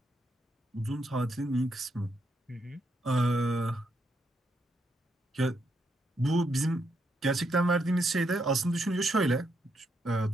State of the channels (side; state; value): both; normal; correlation 0.78